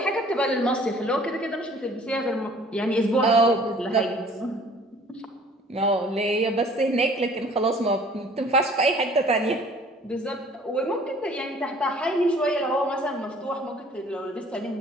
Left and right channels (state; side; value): normal; both; correlation 0.53